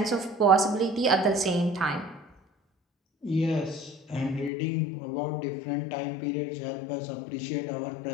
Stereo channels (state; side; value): drops out; right; at 4.5 s